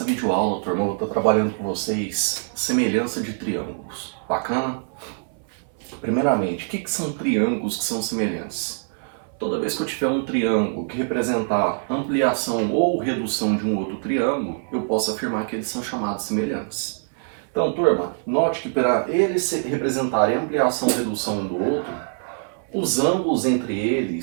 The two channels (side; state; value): left; silent; 58 dB below the other